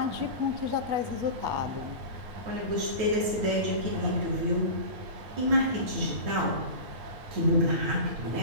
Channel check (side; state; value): left; late; 9.1 ms